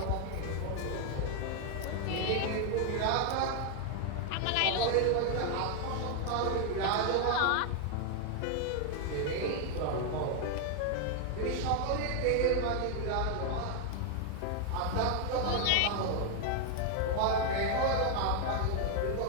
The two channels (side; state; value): both; different; correlation 0.00